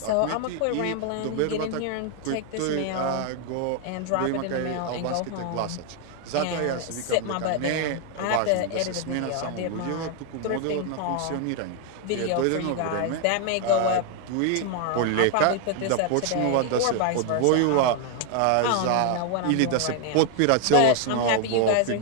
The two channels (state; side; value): different; both; correlation 0.00